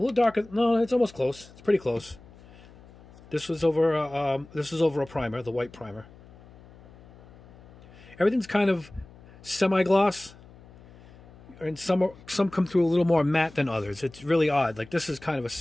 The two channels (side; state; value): left; noise; hum, 22 dB below the sound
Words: little darker. No, it's almost close. It's pretty close. This was over a primer, the white primer. Everything's kind of semi-gloss, and some come through a little more matte than others. It's really odd. Like this is kind of a